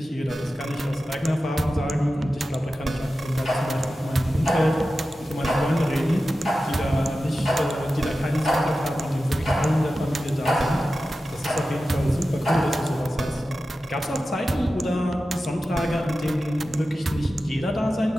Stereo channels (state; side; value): normal; both; correlation 0.93